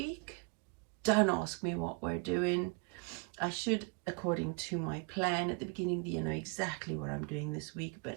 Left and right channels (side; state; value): left; quieter; 33.2 dB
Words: don't ask me what we're doing. I should, according to my plan at the beginning, you know exactly what I'm doing this week,